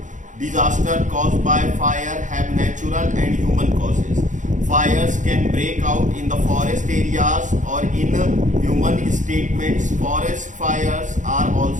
Disaster caused by fire have natural and human causes. Fires can break out in the forest areas or in human statements. Forest fires are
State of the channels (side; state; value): left; late; 0.36 ms